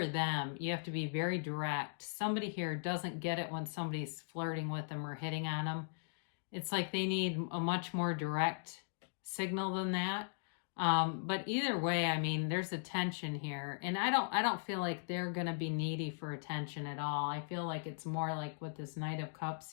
them. You have to be very direct. Somebody here doesn't get it when somebody's flirting with them or hitting on them. It's like they need a much more direct signal than that. But either way, I mean, there's a tension here, and I don't feel like they're going to be needy for attention at all. I feel like it's more like with this Knight of Cups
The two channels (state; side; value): silent; right; digital silence